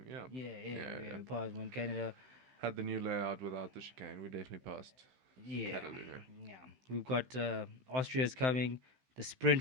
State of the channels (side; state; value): left; late; 16 ms